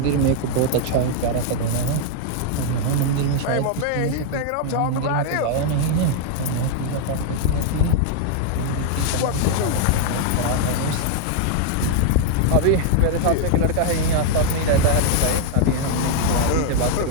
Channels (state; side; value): different; both; correlation 0.00